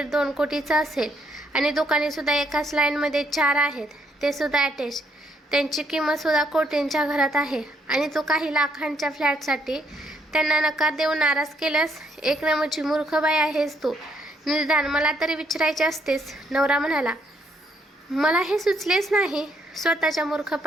कोटीचं असेल आणि दुकानेसुद्धा एकाच लाईनमध्ये 4 आहेत, ते सुद्धा अटॅच. त्यांची किंमतसुद्धा कोटींच्या घरात आहे आणि तू काही लाखांच्या फ्लॅटसाठी त्यांना नकार देऊन नाराज केल्यास? एक नंबरची मूर्ख बाई आहेस तू. निदान मला तरी विचारायचे असतेस. नवरा म्हणाला. मला हे सुचलेच नाही. स्वतःच्या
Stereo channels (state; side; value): normal; both; correlation 0.72